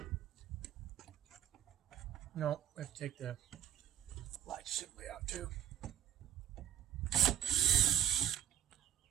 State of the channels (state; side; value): quieter; left; 10.6 dB